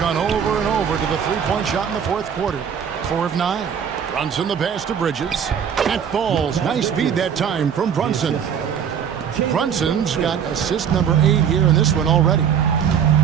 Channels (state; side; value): quieter; left; 7.9 dB